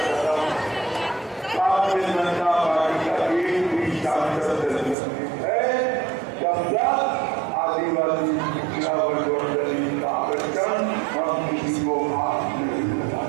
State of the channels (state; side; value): drops out; left; at 5.0 s